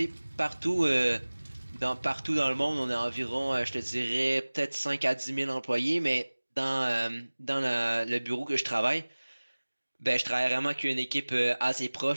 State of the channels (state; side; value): inverted; both; correlation -1.00